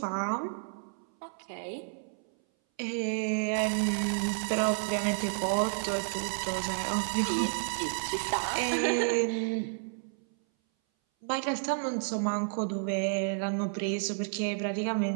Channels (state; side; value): silent; left; 57 dB below the other